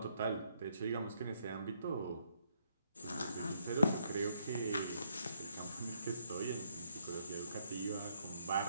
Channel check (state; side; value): inverted; both; correlation -0.73